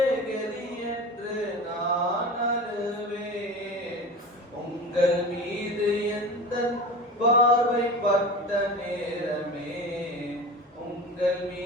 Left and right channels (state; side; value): normal; both; correlation 0.32